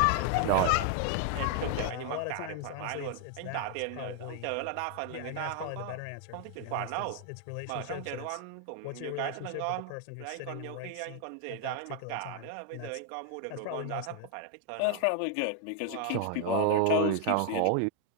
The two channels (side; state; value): both; different; correlation 0.00